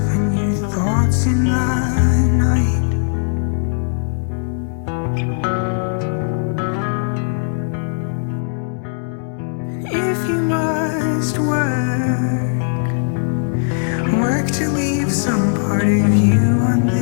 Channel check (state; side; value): silent; right; digital silence